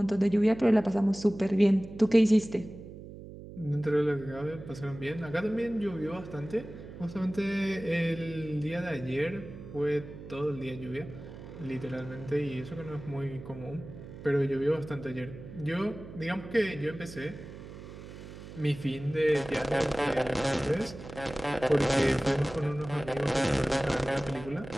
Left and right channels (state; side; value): noise; right; hum, 14 dB below the sound